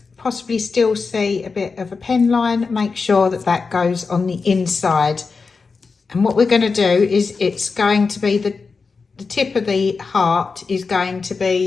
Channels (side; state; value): right; quieter; 4.7 dB